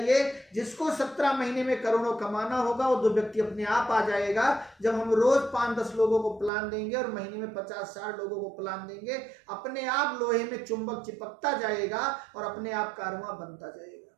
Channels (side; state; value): left; drops out; at 6.5 s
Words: जिसको 17 महीने में करोड़ों कमाना होगा वो 2 व्यक्ति अपने आप आ जाएगा। जब हम रोज 5-10 लोगों को प्लान देंगे और महीने में 50-60 लोगों को प्लान देंगे, अपने आप लोहे में चुंबक चिपकता जाएगा और अपने आप कारवां बनता जाएगा।